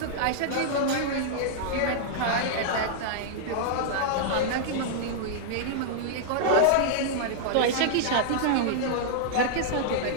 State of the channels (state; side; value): different; both; correlation -0.01